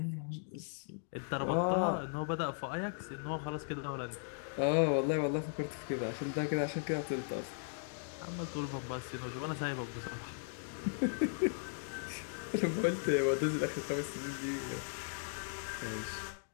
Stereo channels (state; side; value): silent; right; digital silence